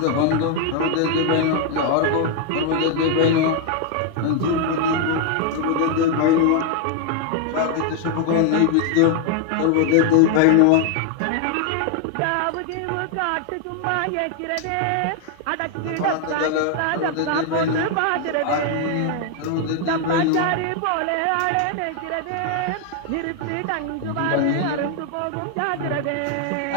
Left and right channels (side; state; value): both; different; correlation 0.00